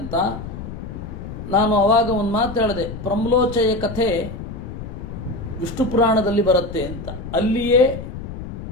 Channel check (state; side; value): noise; left; rumble, 9 dB below the sound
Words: ನಾನು ಅವಾಗ ಒಂದು ಮಾತು ಹೇಳಿದೆ, ಪ್ರಮ್ಲೋಚಯ ಕಥೆ ವಿಷ್ಣು ಪುರಾಣದಲ್ಲಿ ಬರುತ್ತೆ ಅಂತ. ಅಲ್ಲಿಯೇ